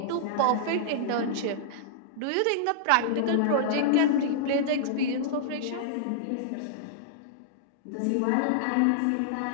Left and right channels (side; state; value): both; different; correlation -0.02